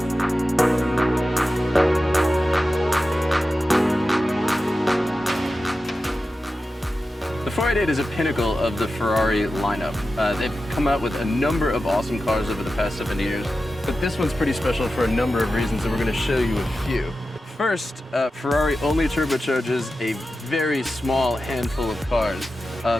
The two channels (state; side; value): normal; both; correlation 0.92